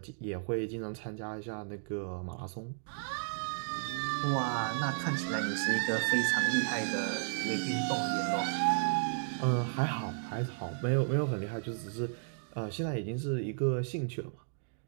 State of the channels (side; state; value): left; silent; digital silence